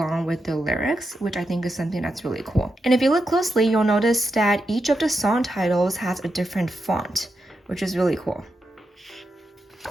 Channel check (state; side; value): normal; both; correlation 0.86